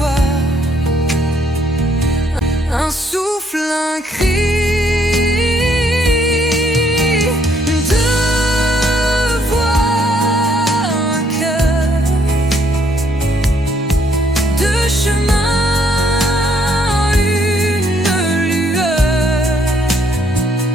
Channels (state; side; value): normal; both; correlation 0.69